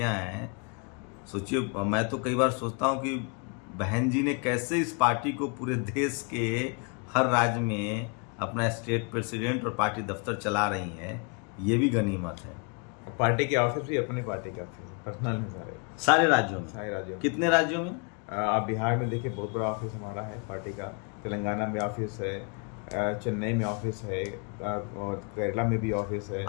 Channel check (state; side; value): quieter; right; 35.1 dB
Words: हैं। सोचिए, मैं तो कई बार सोचता हूं कि बहन जी ने कैसे इस पार्टी को पूरे देश के हर राज्य में अपना स्टेट प्रेसिडेंट और पार्टी दफ्तर चला रही हैं, ये भी गनीमत है। पार्टी के ऑफिस भी अपने पार्टी का पर्सनल है सारे राज्यों में। सारे राज्यों में। कितने राज्यों में? आप बिहार में देखिए, बहुत बड़ा ऑफिस हमारा है पार्टी का। तेलंगाना में ऑफिस है, चेन्नई में ऑफिस है, और केरला में भी ऑफिस है।